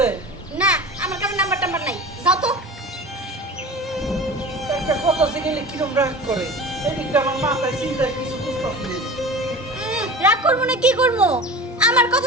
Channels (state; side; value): normal; both; correlation 0.34